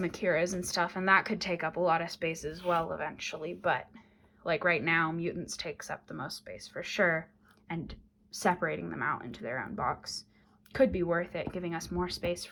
Heroes and stuff, and that could take up a lot of space as well eventually. But like right now, mutants takes up the most space for sure, and separating them out into their own box could be worth it, giving us more space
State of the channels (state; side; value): identical; both; correlation 1.00